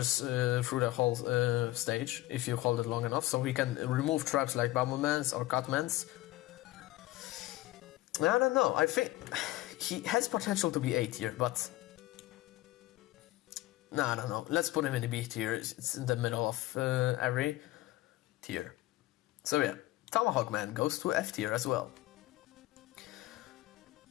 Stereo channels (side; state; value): right; quieter; 17.7 dB